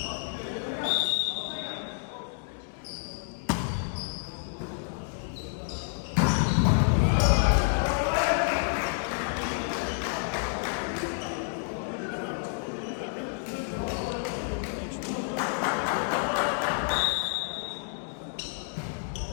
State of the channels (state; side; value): silent; right; 58 dB below the other